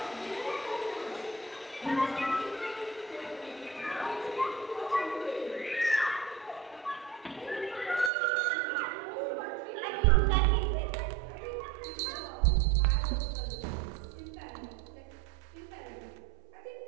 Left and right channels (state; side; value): drops out; left; at 8.1 s